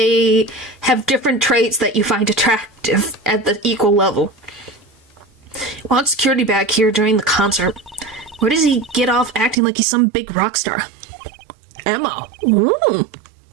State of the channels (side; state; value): left; drops out; at 9.6 s